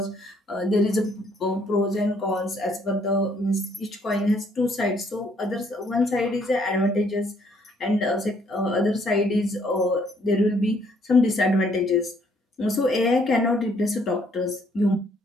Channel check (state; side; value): normal; both; correlation 0.66